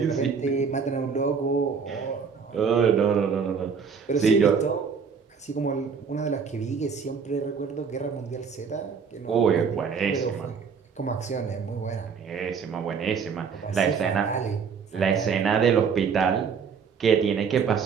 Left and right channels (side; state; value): left; quieter; 6.1 dB